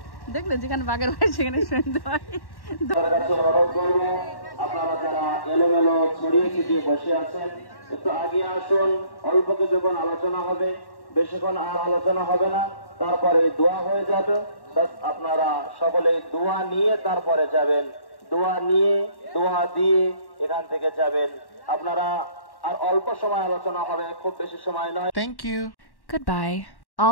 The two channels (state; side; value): late; right; 1.1 ms